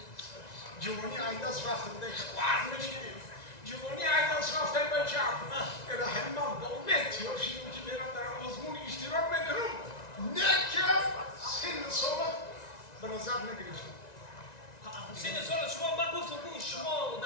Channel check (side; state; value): right; late; 1.9 ms